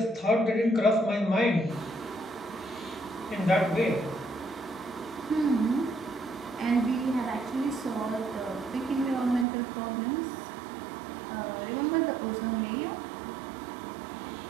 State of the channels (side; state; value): left; drops out; at 9.5 s